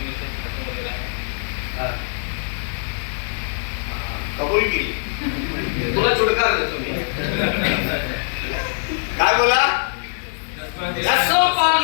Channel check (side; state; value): right; silent; digital silence